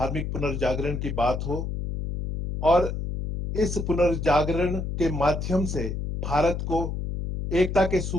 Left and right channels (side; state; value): left; noise; hum, 4 dB below the sound